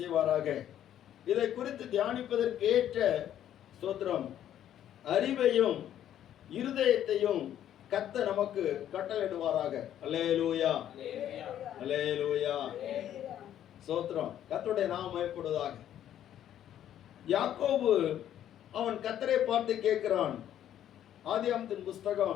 இதை குறித்து தியானிப்பதற்கு ஏற்ற ஸ்தோத்திரம் அறிவையும் இருதயத்தையும் கர்த்தர் நமக்கு கட்டளையிடுவாராக. அல்லேலூயா, அல்லேலூயா. ஸ்தோத்திரம். கர்த்தருடைய நாமம் மகிமைப்படுவதாக. யாக்கோபு அவன் கர்த்தரை பார்த்து கேட்கிறான். ஆதியாகமத்தின்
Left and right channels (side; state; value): right; quieter; 10.9 dB